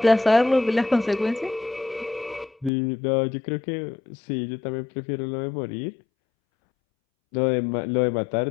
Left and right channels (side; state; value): right; drops out; at 2.7 s